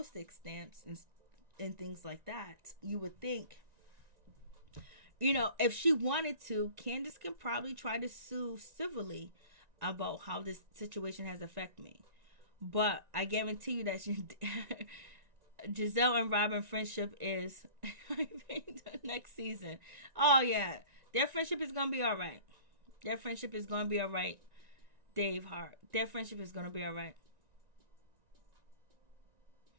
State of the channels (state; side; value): late; left; 1.9 ms